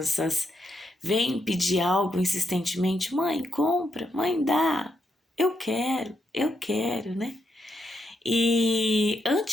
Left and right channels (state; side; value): normal; both; correlation 0.80